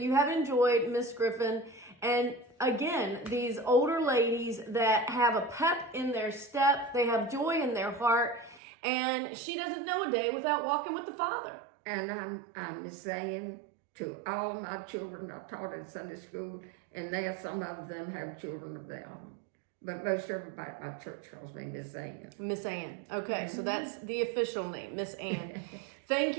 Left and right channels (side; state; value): left; drops out; at 8.6 s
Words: have enjoyed Miss Griffin. And again, these older ladies that have a pep in their step, they have joy in their heart. And she doesn't know a day without walking with the Father. And I'm saying to all of my children, I taught in Sunday school, and now some of them have children of their own. But most everybody at my church calls me Miss Ann. Miss Ann. Okay, so that's the official name, Miss Ann. Thank